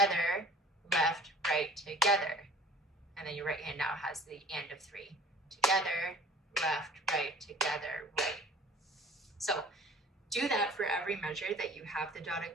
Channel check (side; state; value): both; normal; correlation 0.48